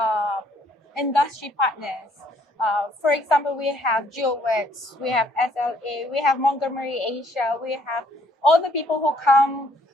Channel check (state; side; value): normal; both; correlation 0.63